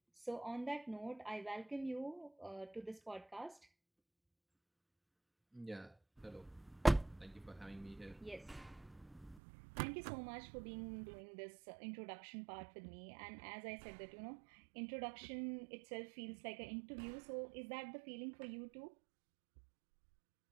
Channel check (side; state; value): left; drops out; at 9.4 s